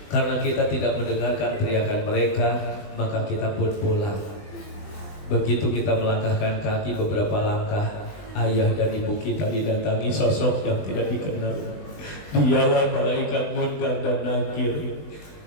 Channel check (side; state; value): right; late; 20 ms